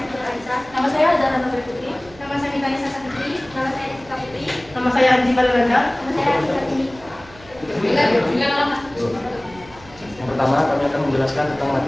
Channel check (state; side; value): noise; right; hum, 22 dB below the sound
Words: Raisa. Nama saya Zahra Nurul Putri. Nama saya Nikanya Sasa Putri. Nama saya Jessica Putri. Nama saya Anji Balilanda. Nama saya Atika Tini. Yang pertama, kami akan menjelaskan tentang